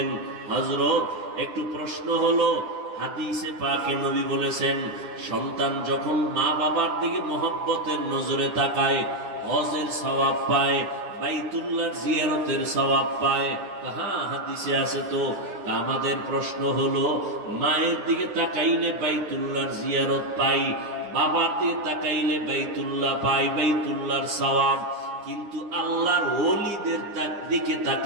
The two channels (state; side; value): late; left; 9.9 ms